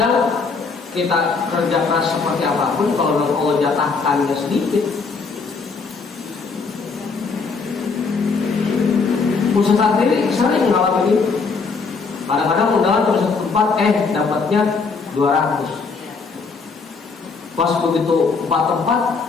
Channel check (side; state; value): right; quieter; 4.7 dB